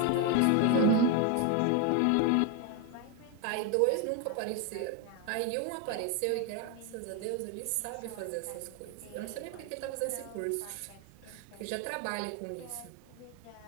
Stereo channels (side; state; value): both; different; correlation 0.02